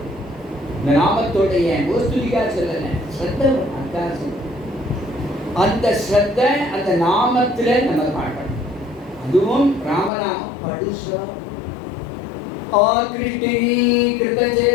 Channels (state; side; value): drops out; right; at 10.1 s